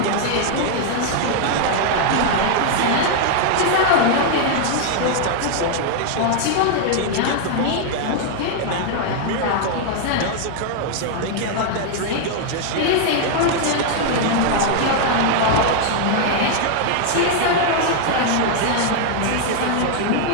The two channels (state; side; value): different; both; correlation 0.00